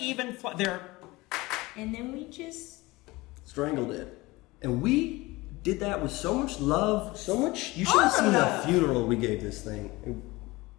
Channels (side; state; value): right; quieter; 21.3 dB